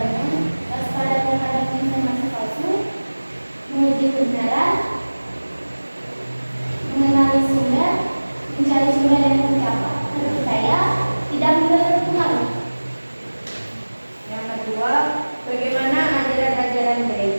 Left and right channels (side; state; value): both; inverted; correlation -1.00